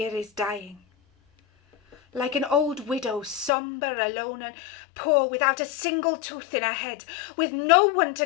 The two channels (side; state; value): right; drops out; at 3.5 s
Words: is dying. Like an old widow, sombre, alone and poor, without a single tooth in her head, with no one to